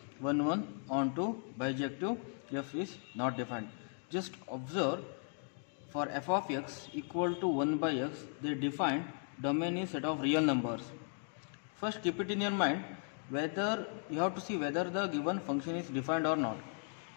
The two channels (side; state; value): right; silent; 53 dB below the other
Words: 1 1 on to bijective f is not defined. Just observe, for f of x equal to 1 by x, they define domain is set of real numbers. First keep it in your mind whether you have to see whether the given function is defined or not.